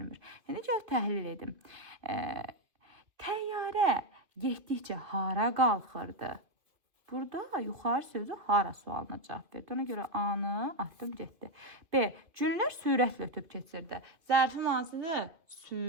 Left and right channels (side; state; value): left; late; 2.5 ms